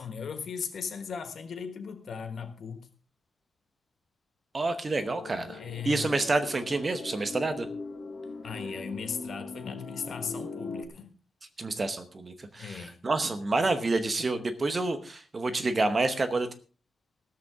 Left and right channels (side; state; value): both; normal; correlation 0.90